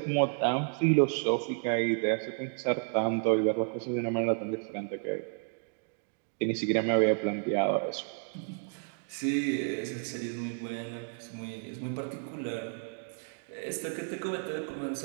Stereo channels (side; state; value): left; silent; 57 dB below the other